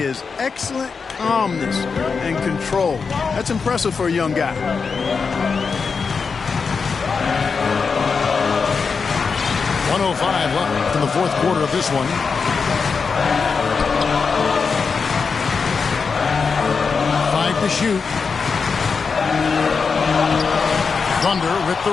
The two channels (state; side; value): quieter; right; 5.3 dB